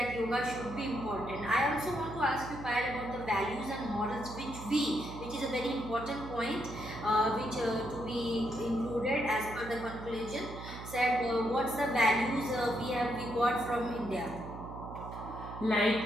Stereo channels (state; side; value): noise; right; hum, 11 dB below the sound